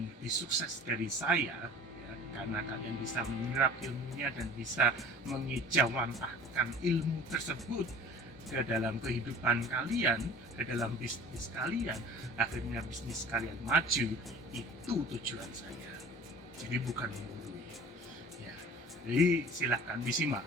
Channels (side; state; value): both; normal; correlation 0.44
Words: lebih sukses dari saya ya, karena kalian bisa menyerap ilmunya dan bisa mengejawantahkan ilmu tersebut ke dalam kehidupan kalian, ke dalam bisnis kalian, akhirnya bisnis kalian maju. Itu tujuan saya. Jadi bukan menggurui. Ya, jadi silahkan disimak.